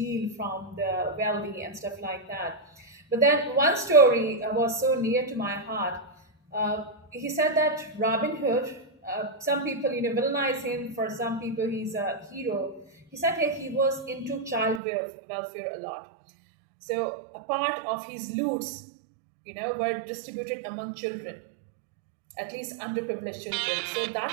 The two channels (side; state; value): left; drops out; at 14.8 s